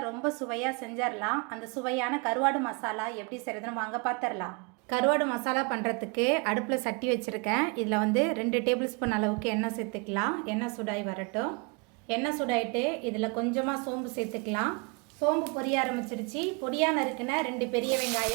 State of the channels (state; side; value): quieter; left; 31.7 dB